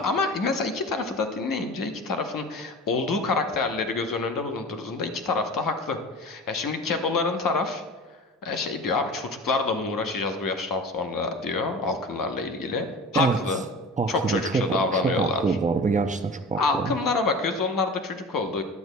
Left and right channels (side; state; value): both; normal; correlation 0.36